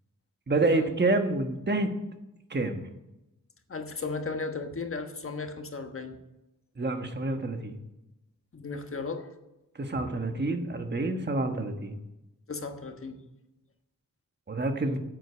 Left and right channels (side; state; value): both; normal; correlation 0.36